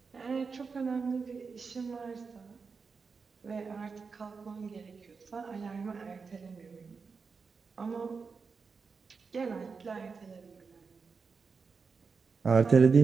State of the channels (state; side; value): quieter; left; 5.0 dB